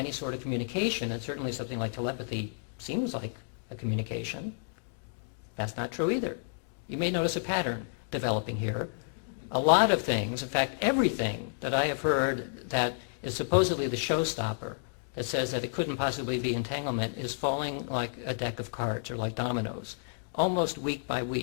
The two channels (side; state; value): right; silent; digital silence